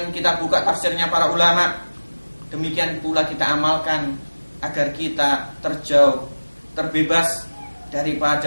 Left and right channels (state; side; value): inverted; both; correlation -1.00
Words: kita buka tafsirnya para ulama. Demikian pula kita amalkan agar kita terjauh, terbebas